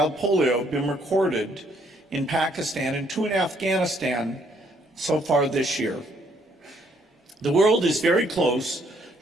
polio have been recorded in Pakistan and 2 in Afghanistan so far this year. The world is very close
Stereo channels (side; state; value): both; normal; correlation 0.68